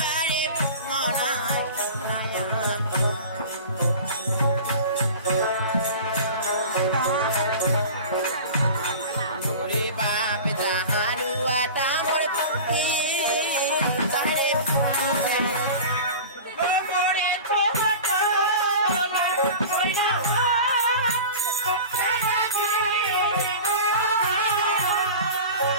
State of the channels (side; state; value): both; inverted; correlation -0.35